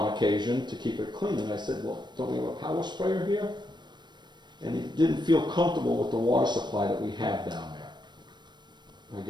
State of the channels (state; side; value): late; left; 0.22 ms